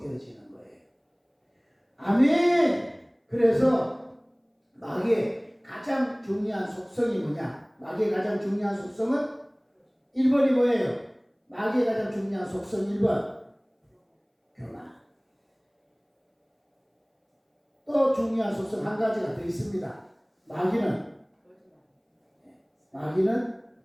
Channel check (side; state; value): both; identical; correlation 1.00